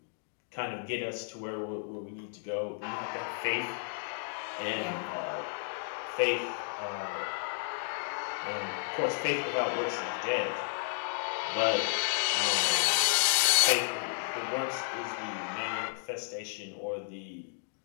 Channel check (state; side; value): silent; right; digital silence